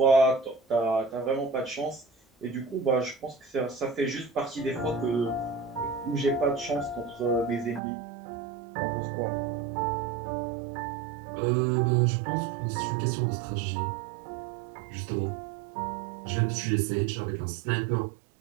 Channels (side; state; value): left; drops out; at 7.8 s